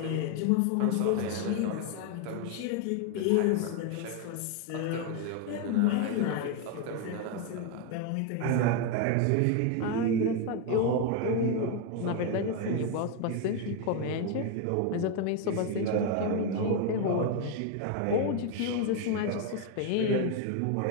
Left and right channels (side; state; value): both; different; correlation 0.01